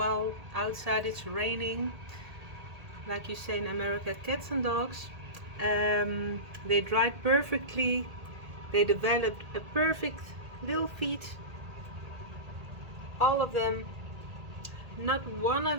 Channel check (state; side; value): late; left; 1.8 ms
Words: outside it's raining, like you say in America, cats and dogs. They dried perfectly. They developed a perfect little feet. All of them. Not one